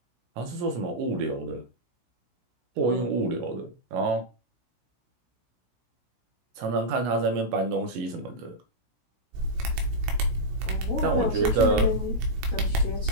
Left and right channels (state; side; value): late; left; 16 ms